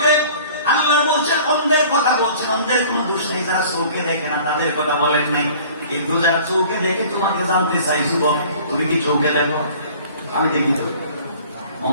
আল্লাহ বলছেন অন্ধের কথা বলছেন। অন্ধের কোনো দোষ নেই, যারা চোখে দেখে না তাদের কথা বলেন নাই। কিন্তু যারা চোখে দেখে তোমাকে জানতে চাই, যুবক তুমি কি চোখে দেখো? আমি দেখি তো।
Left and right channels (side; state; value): both; inverted; correlation -0.48